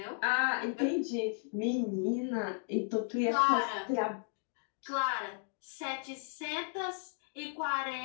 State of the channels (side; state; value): right; silent; 55 dB below the other